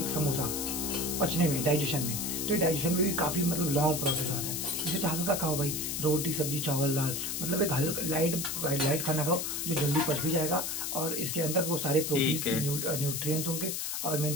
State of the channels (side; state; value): left; noise; hiss, 2 dB below the sound